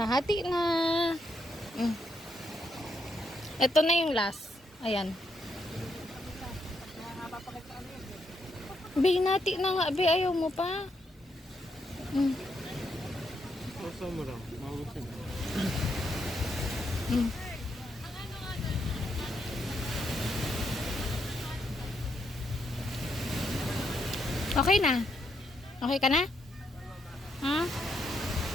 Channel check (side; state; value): both; normal; correlation 0.78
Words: Hati na. Ito na yung last. Ayan. Binati na nga. Be, ayaw mo pa. Masa mo lang. Magusin. Okay na? Okay ka na? Ha?